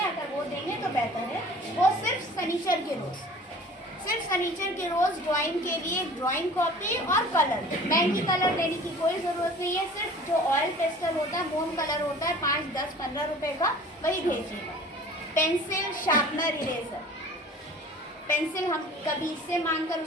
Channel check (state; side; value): normal; both; correlation 0.46